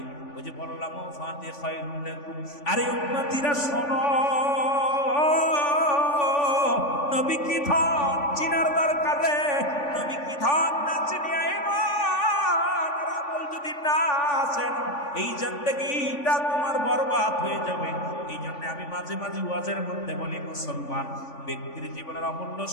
ওই যে বললাম ফাতে খায়রুন লাকুম। আরে উম্মতিরা শোনো, নবী কি ধন চিনার দরকারে, নবী কি ধন না চিনিয়া ঈমান আর আমল যদি না আসেন এই জিন্দেগিটা তোমার বরবাদ হয়ে যাবে। এই জন্য আমি মাঝে মাঝে ওয়াজের মধ্যে বলি মুসলমান ব্যক্তির জীবনের অমূল্য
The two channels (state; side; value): late; right; 3.5 ms